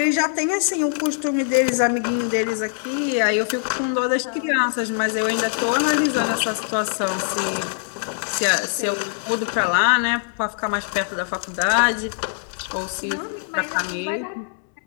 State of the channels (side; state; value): right; silent; 64 dB below the other